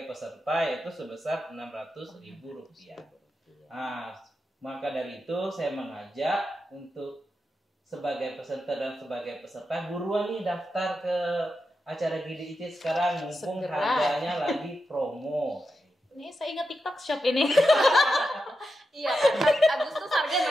peserta itu sebesar 600.000 rupiah. Nah, maka dari itu saya mengajak untuk sebagai presenter dan sebagai peserta buruan nih daftar ke acara GDIC sekarang mumpung harganya lagi promo. Ini saya ingat TikTok Shop ini. Iya, Agustus harga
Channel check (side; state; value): both; normal; correlation 0.88